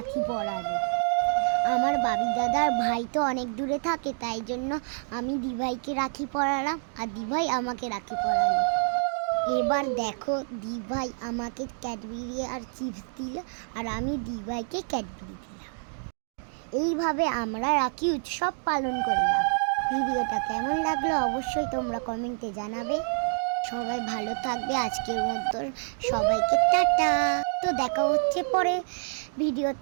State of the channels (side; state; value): left; silent; 60 dB below the other